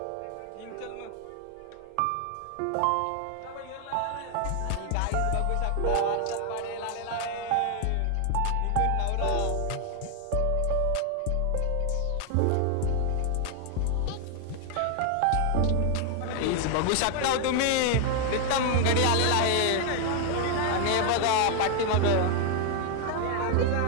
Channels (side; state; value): both; different; correlation 0.00